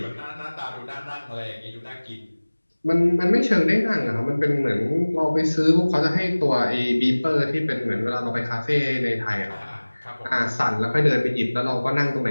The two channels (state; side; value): inverted; both; correlation -1.00